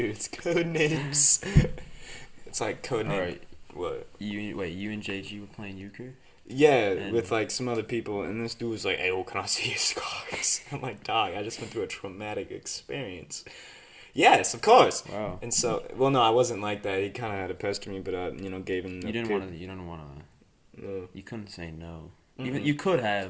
code names. It's like code name. Alright. What? You and JG were playing euchre? Yeah, with like some other people, and this dude was like, "Hey, well, can I see your scars?" I'm like, "Dog, I just went through a traumatic experience." Yes, of course. Wow. And so, well, no, I wasn't like that. He kind of had to pester me, but I, gave him. You didn't want to. You didn't want to. No. You couldn't say no. Even you could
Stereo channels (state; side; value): identical; both; correlation 1.00